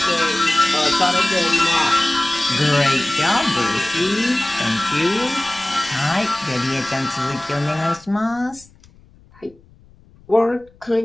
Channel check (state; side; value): noise; left; rumble, 27 dB below the sound